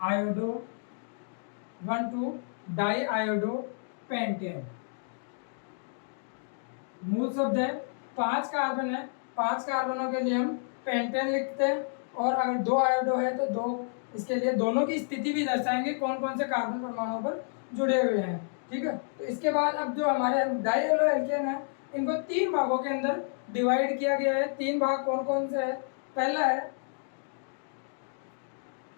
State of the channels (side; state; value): right; silent; digital silence